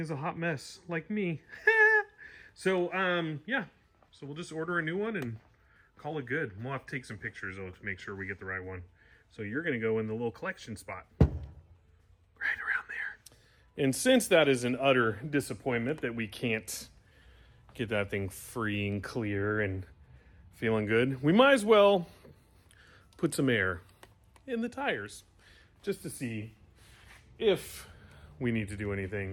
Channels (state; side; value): identical; both; correlation 1.00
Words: a hot mess, like me. So, so we'll just order a new one and call it good. We'll have to take some pictures though to make sure we get the right one. So you're gonna go in the little collection spot right around there. And since that is an utter disappointment that we can't get that thing free and clear and feeling good, we might as well put some air in the tires just to see if we need to do